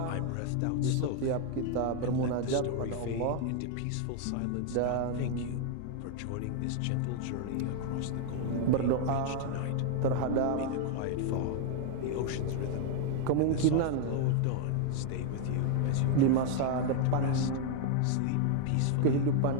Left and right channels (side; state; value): both; different; correlation 0.00